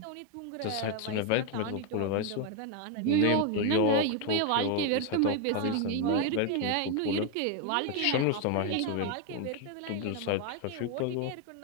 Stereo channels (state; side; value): different; both; correlation 0.01